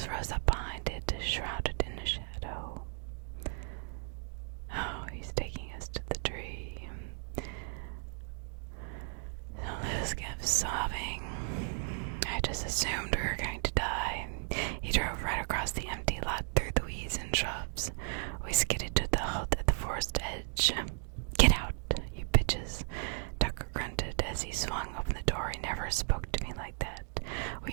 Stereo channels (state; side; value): silent; left; 54 dB below the other